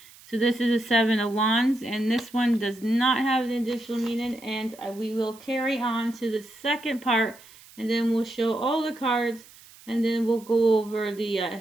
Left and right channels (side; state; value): right; noise; hiss, 23 dB below the sound